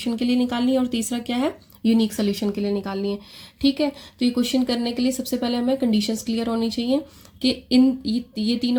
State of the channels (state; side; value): identical; both; correlation 1.00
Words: के लिए निकालनी है, और तीसरा क्या है, यूनिक सोल्यूशन के लिए निकालनी है। ठीक है, तो ये क्वेश्चन करने के लिए सबसे पहले हमें कंडीशंस क्लियर होनी चाहिए कि ये